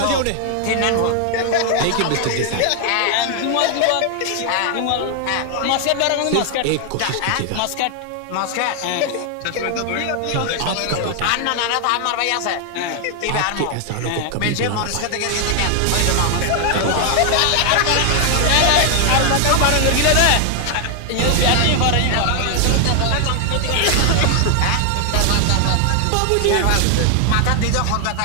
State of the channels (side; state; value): both; different; correlation 0.00